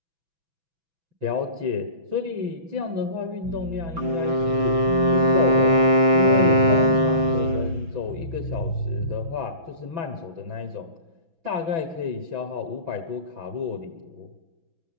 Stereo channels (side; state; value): left; late; 6.1 ms